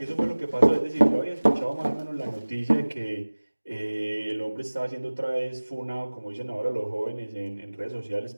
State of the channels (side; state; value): both; inverted; correlation -1.00